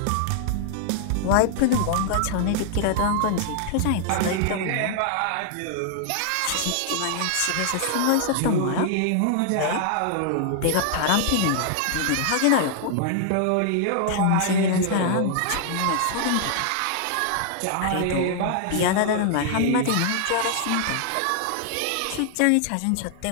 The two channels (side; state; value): both; different; correlation -0.01